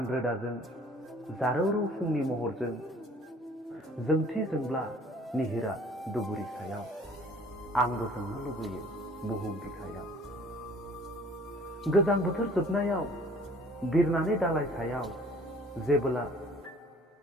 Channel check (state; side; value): normal; both; correlation 0.53